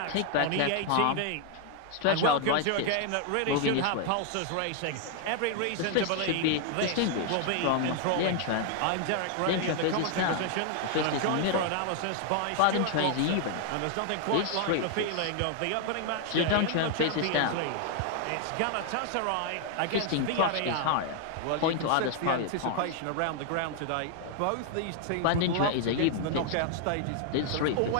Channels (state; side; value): different; both; correlation 0.00